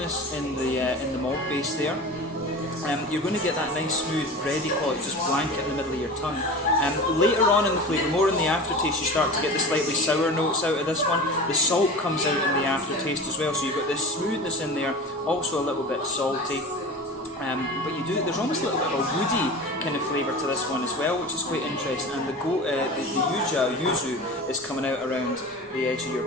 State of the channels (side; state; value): both; normal; correlation 0.33